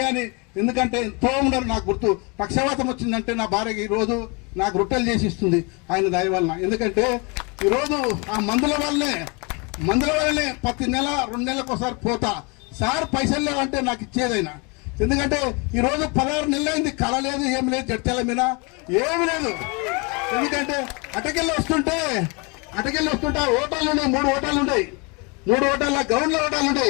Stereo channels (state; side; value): quieter; right; 30.5 dB